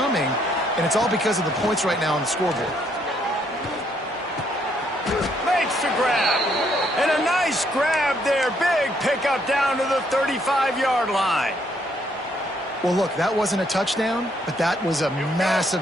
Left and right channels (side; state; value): both; normal; correlation 0.70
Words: and it's all because of the points right now on the scoreboard. Makes the grab. And a nice grab there. Big pickup down to the 35-yard line. Well, look, that wasn't a touchdown, but that was a massive